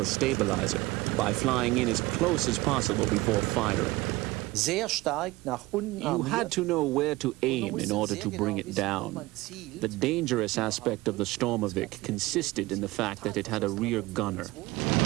stabilizer by flying in as close as possible before firing. You had to know where to aim in order to bring it down. The dangerous aspect of the Stormovik consisted in the fact that it had a rear gunner.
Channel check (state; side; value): quieter; left; 20.0 dB